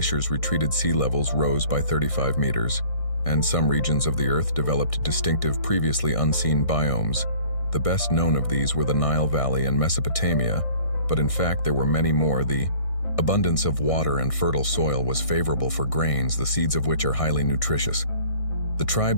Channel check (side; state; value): right; late; 1.6 ms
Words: retreated, sea levels rose by 35 meters, and some regions of the Earth developed distinctive, previously unseen biomes. The best known of these were the Nile Valley and Mesopotamia, but in fact there were many more. The abundance of water and fertile soil was favorable for grains, the seeds of which are highly nutritious. The